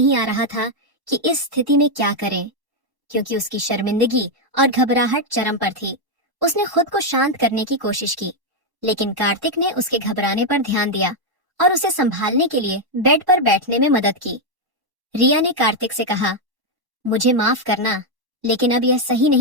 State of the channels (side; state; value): left; late; 1.1 ms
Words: आ रहा था कि इस स्थिति में क्या करें, क्योंकि उसकी शर्मिंदगी और घबराहट चरम पर थी। उसने खुद को शांत करने की कोशिश की, लेकिन कार्तिक ने उसके घबराने पर ध्यान दिया और उसे संभालने के लिए बेड पर बैठने में मदद की। रिया ने कार्तिक से कहा, मुझे माफ करना, लेकिन अब यह सही